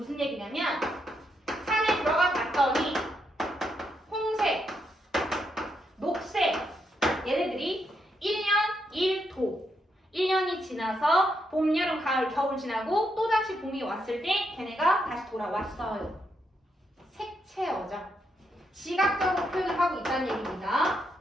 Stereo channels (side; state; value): both; normal; correlation 0.79